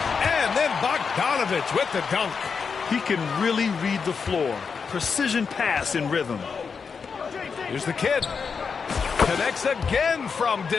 And then Bogdanovich with the dunk. He can really read the floor. Precision pass in rhythm. Here's the kid. Connects again from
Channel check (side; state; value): right; quieter; 5.7 dB